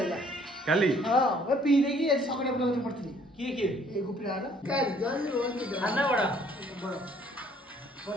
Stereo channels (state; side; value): normal; both; correlation 0.61